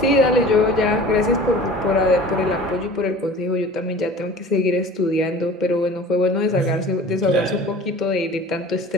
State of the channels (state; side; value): normal; both; correlation 0.42